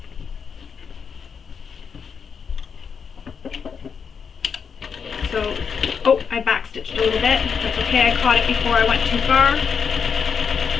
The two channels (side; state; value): right; quieter; 6.4 dB